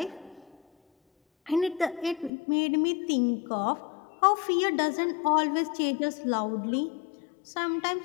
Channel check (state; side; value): drops out; right; at 2.3 s